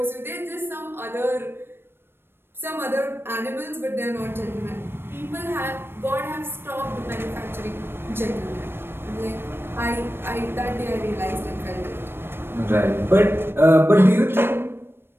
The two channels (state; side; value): late; left; 0.11 ms